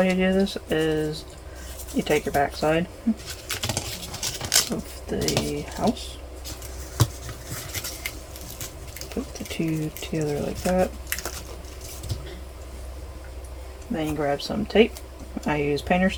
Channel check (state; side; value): identical; both; correlation 1.00